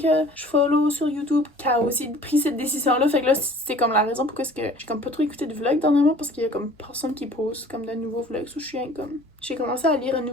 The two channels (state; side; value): normal; both; correlation 0.49